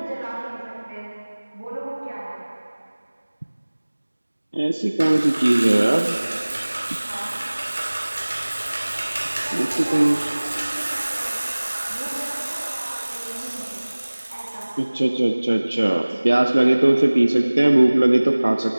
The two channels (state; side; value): inverted; both; correlation -1.00